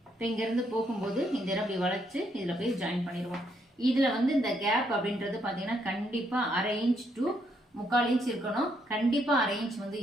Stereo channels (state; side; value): normal; both; correlation 0.74